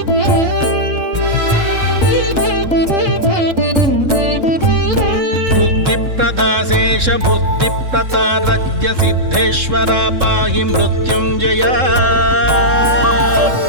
बुद्धिप्रदाशेष बुद्धिप्रतारज्ञ सिद्धेश्वरा पाहि मृत्युञ्जय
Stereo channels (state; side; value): late; left; 3.7 ms